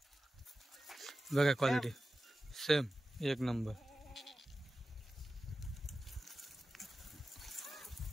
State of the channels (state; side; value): normal; both; correlation 0.94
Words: बघा क्वालिटी सेम एक नंबर.